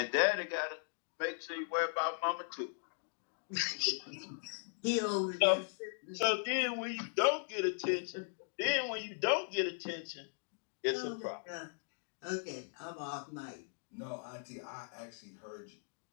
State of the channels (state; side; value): silent; right; digital silence